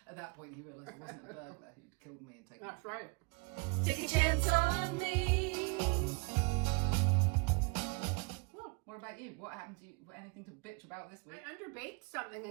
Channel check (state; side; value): quieter; left; 31.1 dB